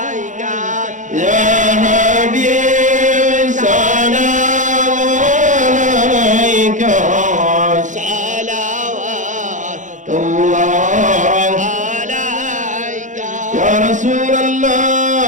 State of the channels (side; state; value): left; late; 0.36 ms